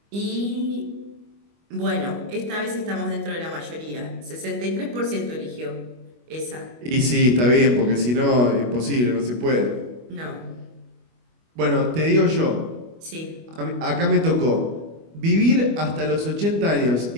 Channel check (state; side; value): late; left; 25 ms